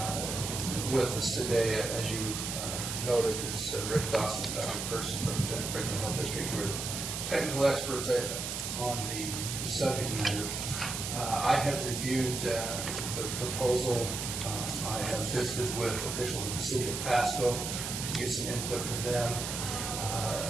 with us today. As you noted, it's Rick Dawson, Dr. Person from the Denton Franklin Health District, who are technical experts on the subject matter. I have reviewed the proposal. I have visited with officials in the city of Pasco to get some input from them,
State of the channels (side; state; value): right; noise; hiss, 4 dB below the sound